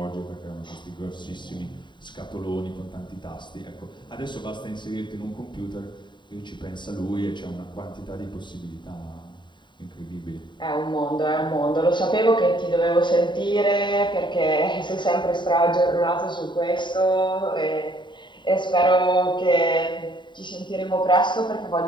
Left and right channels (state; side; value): late; right; 0.23 ms